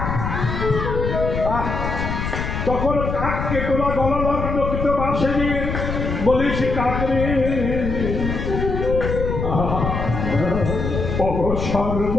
তখন কাককে তোরা গলা লগ্ন কিন্তু বাসে নিয়ে বলিস কাক রে,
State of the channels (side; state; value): left; noise; rumble, 3 dB below the sound